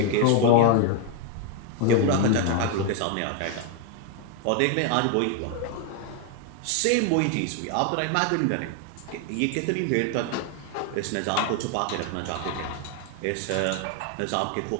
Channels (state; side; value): different; both; correlation 0.01